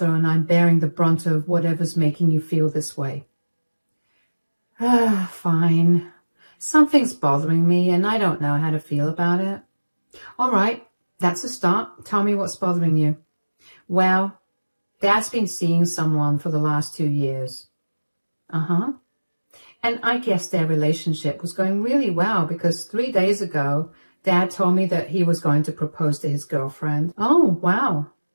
and I'm bearing the brunt of whatever's making you feel this way." Fine. Something's bothering me and I don't know how to feel about it." "All right, that's a start. Tell me what's bothering you." "Well, Dad's been seeing someone for the last 2 years. "Uh-huh. And I guess their relationship was going really well because 3 days ago, Dad told me that he was going to propose to his girlfriend." "Oh, wow.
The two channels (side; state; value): both; inverted; correlation -1.00